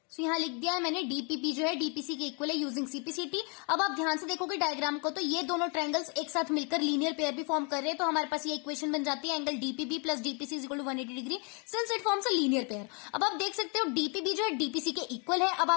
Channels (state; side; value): quieter; right; 35.2 dB